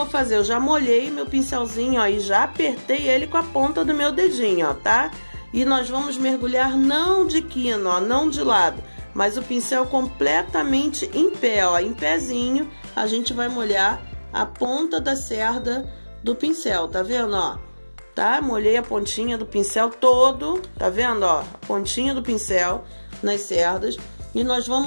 fazer? Eu já molhei meu pincelzinho, ó, e já apertei ele com a ponta do meu dedinho, ó, tá? E nós vamos mergulhar não de quina, ó, não de lado, mas o pincel completamente em pé, ó, em pezinho, a gente vai molhar a ponta da cerda do pincel, tá vendo, ó? Tá? Molhei a pontinha do pincel todo, tá vendo, ó? A pontinha do pincel nas cerdas. E nós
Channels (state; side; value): inverted; both; correlation -1.00